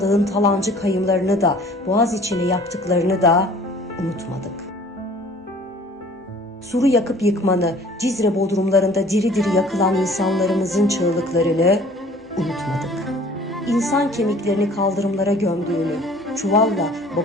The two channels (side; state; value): both; normal; correlation 0.51